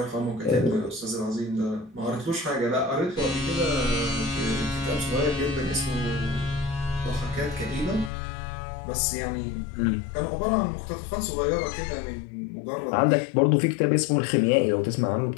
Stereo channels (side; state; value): right; drops out; at 8.1 s